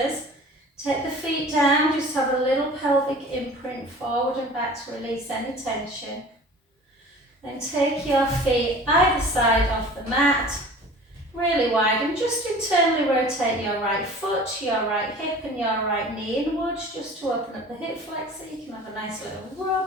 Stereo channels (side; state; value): both; normal; correlation 0.42